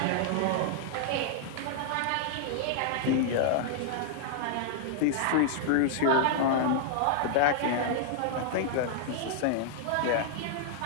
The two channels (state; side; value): different; both; correlation -0.01